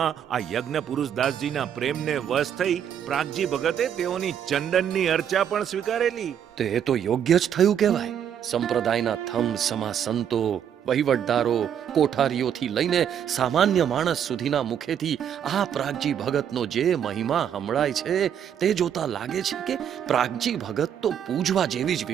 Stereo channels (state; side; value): quieter; left; 9.0 dB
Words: આ યજ્ઞ પુરુષદાસજીના પ્રેમને વશ થઈ પ્રાગજી ભગતે તેઓની ચંદનની અર્ચા પણ સ્વીકારેલી. તો એ તો યોગ્ય જ થયું કહેવાય. સંપ્રદાયના થમ સમા સંતો, વહીવટદારો, કોઠારીઓથી લઈને સામાન્ય માણસ સુધીના મુખેથી આ પ્રાગજી ભગતનો જે મહિમા સંભળાય છે તે જોતા લાગે છે કે પ્રાગજી ભગત તો પૂજવા જેવી જ